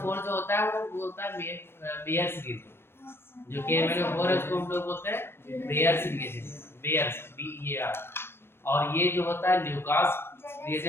जो होता है वो बोलता है बेयर्स रिएजेंट, जो KMnO4 है उसको हम लोग बोलते हैं बेयर्स रिएजेंट, बेयर्स BEAR। और ये जो होता है ल्यूकास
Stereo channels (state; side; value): late; right; 0.12 ms